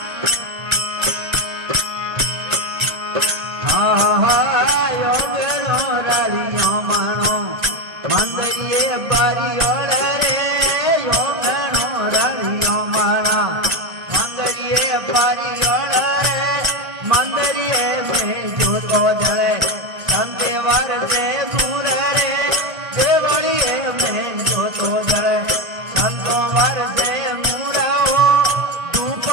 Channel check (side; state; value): left; late; 1.5 ms